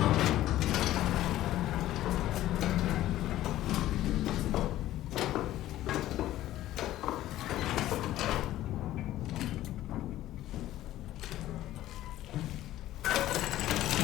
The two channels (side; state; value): right; quieter; 14.3 dB